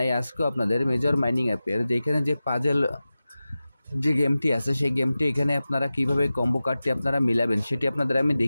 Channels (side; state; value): both; inverted; correlation -0.95